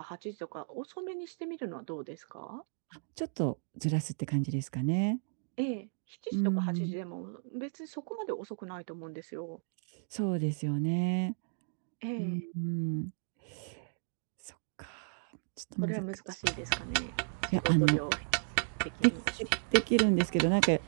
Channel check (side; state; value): left; silent; digital silence